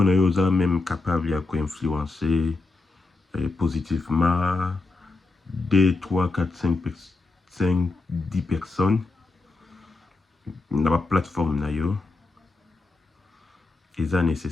na yo ça même capable à influencer positivement 2, 3, 4, 5, 10 personnes na la plateforme na yo. Et ça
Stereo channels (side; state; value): right; quieter; 3.5 dB